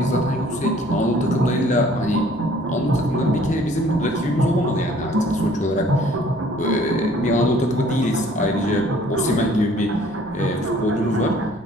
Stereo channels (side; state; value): right; noise; rumble, 24 dB below the sound